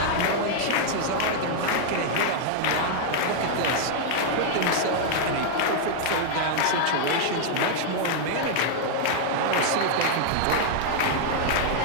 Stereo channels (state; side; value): different; both; correlation -0.01